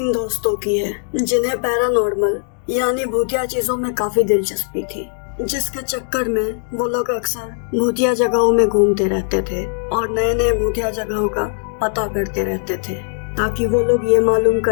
दोस्तों की है जिन्हें पैरानॉर्मल यानी भूतिया चीजों में काफी दिलचस्पी थी, जिसके चक्कर में वो लोग अक्सर भूतिया जगहों में घूमते रहते थे और नए नए भूतिया जगहों का पता करते रहते थे ताकि वो लोग ये मालूम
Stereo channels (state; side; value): silent; right; 59 dB below the other